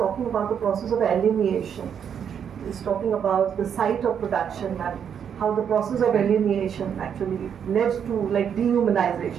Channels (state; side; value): quieter; left; 8.0 dB